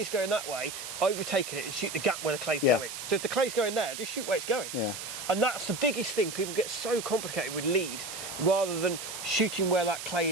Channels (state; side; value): noise; right; hiss, 8 dB below the sound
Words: going that way, overtaking it and shoot the gap where the clay's going. So if the clay's going there, just shoot where it's going. Yeah. And that's the biggest thing. People get so complicated with lead rather than shooting where that clay